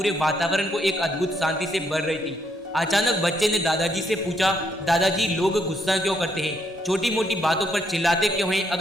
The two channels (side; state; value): both; normal; correlation 0.73